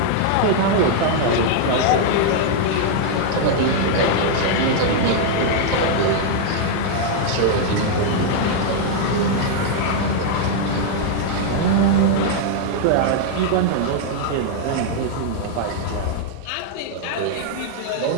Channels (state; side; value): different; both; correlation -0.01